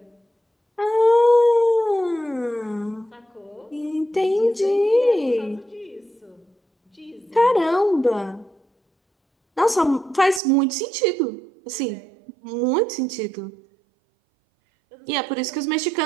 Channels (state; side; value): drops out; left; at 10.4 s